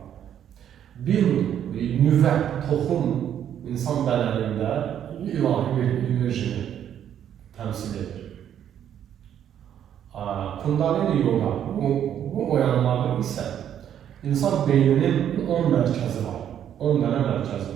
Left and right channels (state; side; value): quieter; left; 9.8 dB